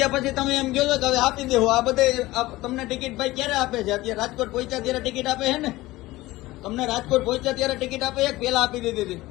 પછી તમે એમ કહો છો કે હવે આપી દેવો. આ બધે તમને ટિકિટ ભાઈ ક્યારે આપે છે? અત્યારે રાજકોટ પહોંચ્યા ત્યારે ટિકિટ આપે છે ને? તમને રાજકોટ પહોંચ્યા ત્યારે ટિકિટ આપે છે? પેલા આપી દીધી હતી?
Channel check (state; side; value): quieter; right; 18.5 dB